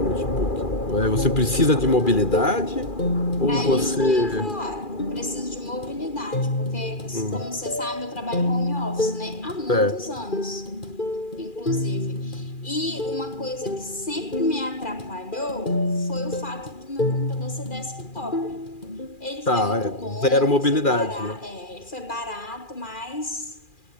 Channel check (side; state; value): right; late; 2.4 ms